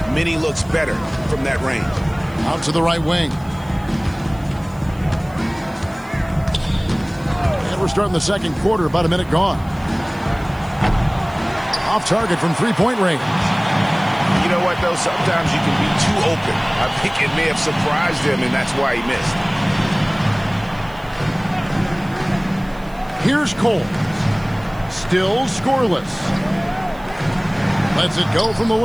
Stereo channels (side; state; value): right; noise; hiss, 27 dB below the sound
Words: many looks better from that range. Out to the right wing. And we're starting the second quarter, about a minute gone. Off target from three-point range. You know what, though? Sometimes you can be too open. I think it may have surprised him, and that's why he missed. Here's Cole. Still scoreless. Lets it go from the